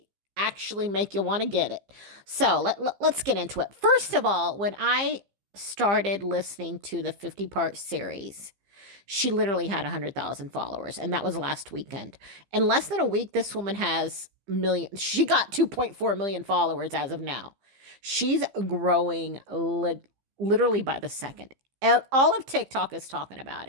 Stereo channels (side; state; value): left; late; 15 ms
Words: actually make you want to get it. So let's get into it. First of all, when I started listening to the 50-part series, she literally had 100,000 followers, and that was last weekend. In less than a week, this woman has millions. She got 2.4 million followers as of now. She's growing literally by the second. All of TikTok is talking about